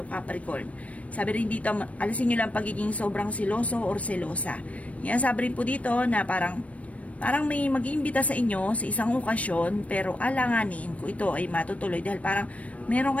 Capricorn. Sabi rin dito, alisin nyo lang pagiging sobrang siloso or selosa. Sabi rin po dito na parang may mag-iimbita sa inyo sa isang okasyon, pero alanganin ko ito ay matutuloy dahil parang meron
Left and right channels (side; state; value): right; late; 0.065 ms